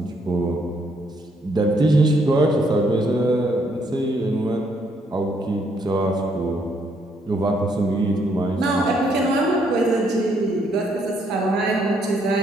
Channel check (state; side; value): normal; both; correlation 0.71